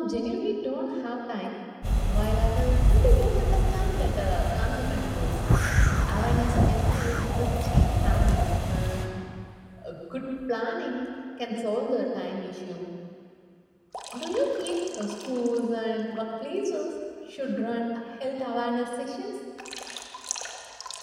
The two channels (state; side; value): identical; both; correlation 1.00